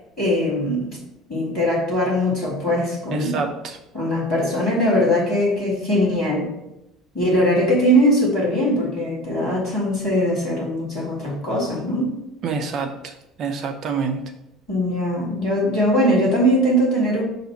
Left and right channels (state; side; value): normal; both; correlation 0.35